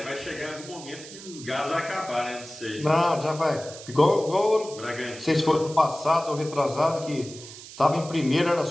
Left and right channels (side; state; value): right; noise; hiss, 15 dB below the sound